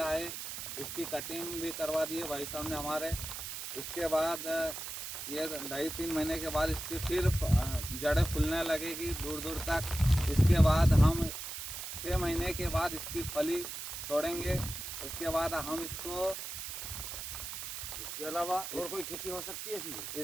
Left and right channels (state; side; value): noise; right; hiss, 7 dB below the sound